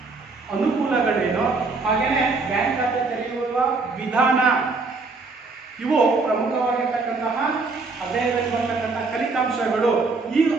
ಅನುಕೂಲಗಳೇನು, ಹಾಗೇನೆ ಬ್ಯಾಂಕ್ ಖಾತೆ ತೆರೆಯುವ ವಿಧಾನ, ಇವು ಪ್ರಮುಖವಾಗಿರ್ತಕ್ಕಂತಹ ಅಧ್ಯಯನದಲ್ಲಿ ಬರ್ತಕ್ಕಂತಹ ಫಲಿತಾಂಶಗಳು. ಈ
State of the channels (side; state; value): left; quieter; 4.0 dB